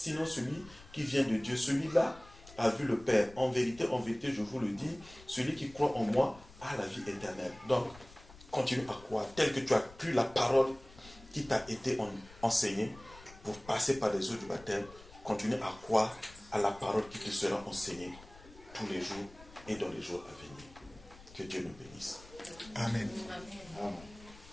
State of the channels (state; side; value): noise; left; rumble, 21 dB below the sound